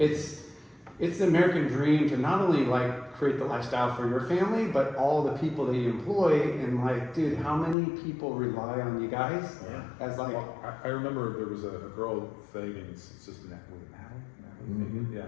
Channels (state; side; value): drops out; right; at 7.8 s